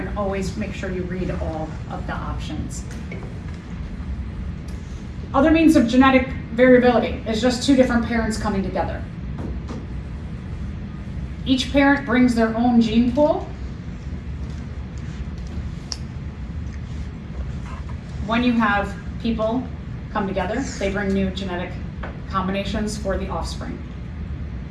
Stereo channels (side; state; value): both; identical; correlation 1.00